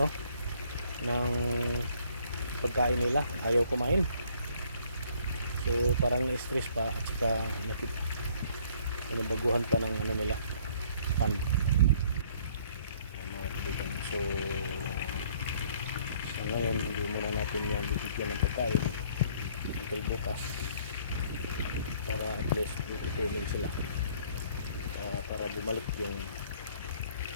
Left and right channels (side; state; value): both; inverted; correlation -0.60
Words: ng pagkain nila, ayaw kumain. So parang na-stress pa, at saka nabaguhan pa ng nila pan. So ngayon hindi muna natin yan bibigyan ng pagkain until bukas, para at least tutulong sila, para bumalik yung